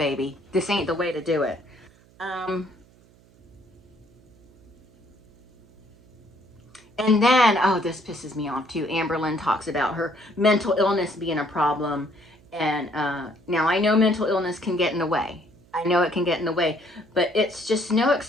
This ain't the way to do it. And then, oh, this pisses me off too. Amberlynn talks about her mental illness being a problem. And now I know mental illness can get in the way. I know it can get in the way, but it's just no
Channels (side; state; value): right; noise; hum, 29 dB below the sound